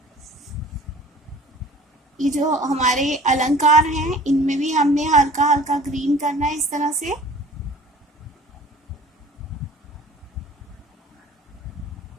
ये जो हमारे अलंकार हैं इनमें भी हमने हल्का हल्का ग्रीन करना है, इस तरह से।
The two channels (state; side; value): normal; both; correlation 0.47